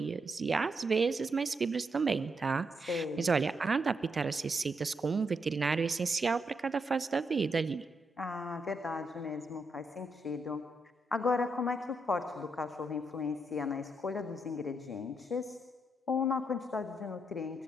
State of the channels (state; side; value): normal; both; correlation 0.80